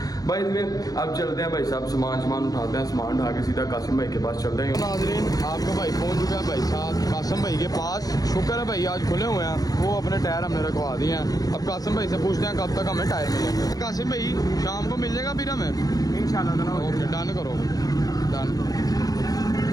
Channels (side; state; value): right; late; 0.18 ms